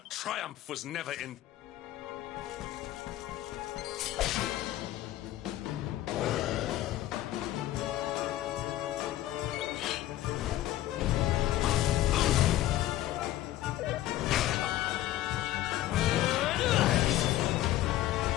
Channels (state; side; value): quieter; right; 14.4 dB